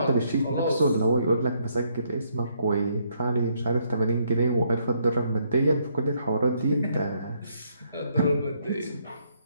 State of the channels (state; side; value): inverted; both; correlation -0.72